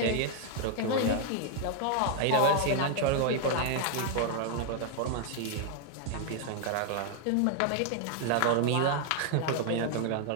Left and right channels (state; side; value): different; both; correlation 0.00